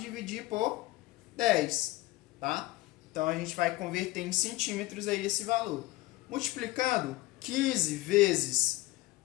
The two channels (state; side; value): quieter; right; 19.3 dB